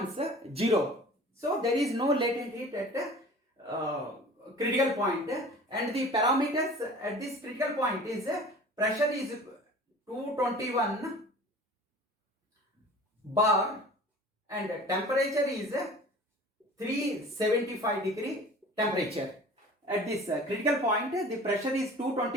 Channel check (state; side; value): normal; both; correlation 0.43